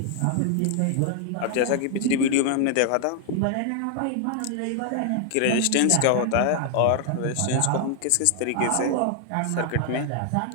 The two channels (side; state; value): both; different; correlation 0.00